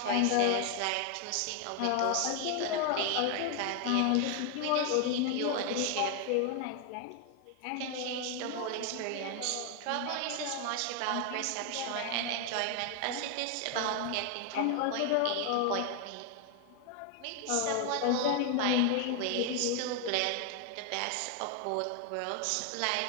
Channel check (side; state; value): both; different; correlation 0.01